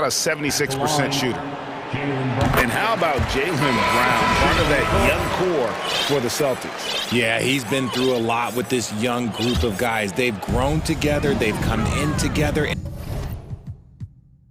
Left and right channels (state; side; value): identical; both; correlation 1.00